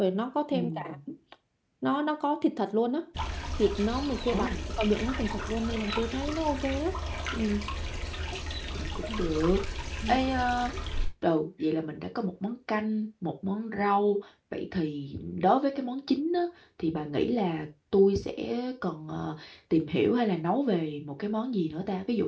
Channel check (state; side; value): identical; both; correlation 1.00